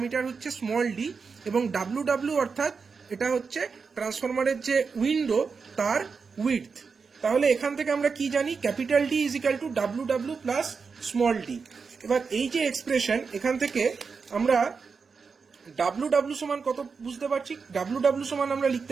হচ্ছে স্মল ডি, এবং ডাব্লু ডাব্লু অর্থাৎ এটা হচ্ছে ট্রান্সফরমারের যে উইন্ডো তার উইডথ। তাহলে এখান থেকে আমরা কি জানি, capital D is equal to W W plus small D. এবার এই যে এক্সপ্রেশন, এখান থেকে আমরা ডাব্লু ডাব্লু সমান কত বুঝতে পারছি, ডাব্লু ডাব্লু সমান আমরা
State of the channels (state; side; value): quieter; left; 5.2 dB